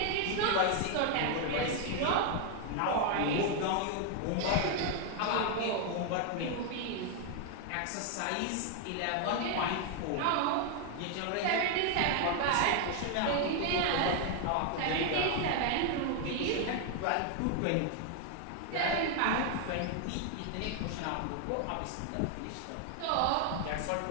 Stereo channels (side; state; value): both; different; correlation 0.01